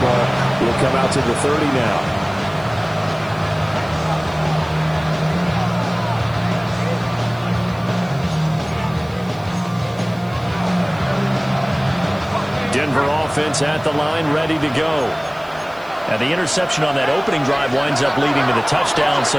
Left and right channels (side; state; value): right; noise; hiss, 27 dB below the sound